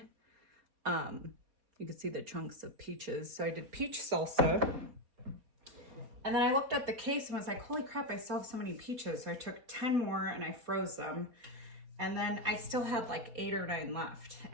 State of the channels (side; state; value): left; late; 4.2 ms